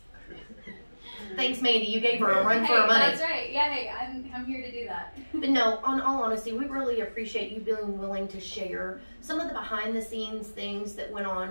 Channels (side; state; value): both; inverted; correlation -1.00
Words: Thanks, Mandy. You gave her a run for her money. That's right. Yeah, hey, I'm here to do that. But no, on all honesty, we really appreciate you being willing to share some of the behind-the-scenes things that went on